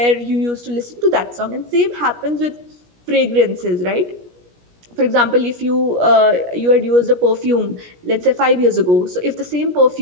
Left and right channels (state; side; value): late; left; 17 ms